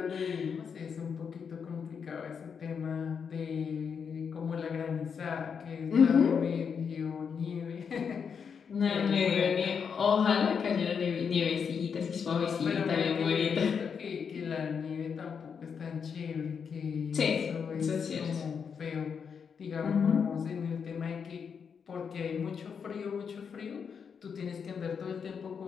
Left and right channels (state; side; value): quieter; right; 6.6 dB